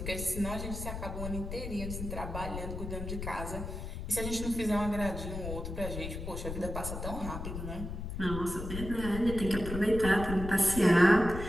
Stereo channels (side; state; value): left; noise; rumble, 6 dB below the sound